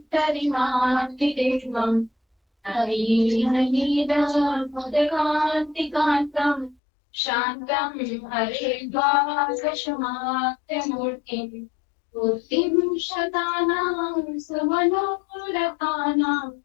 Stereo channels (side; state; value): right; drops out; at 6.8 s